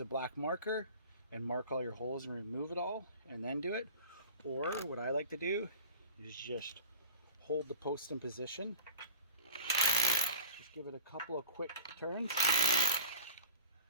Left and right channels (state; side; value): inverted; both; correlation -0.38